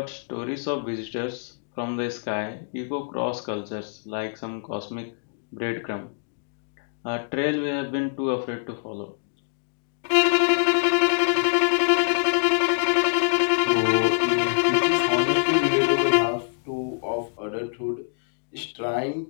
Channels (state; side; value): silent; right; digital silence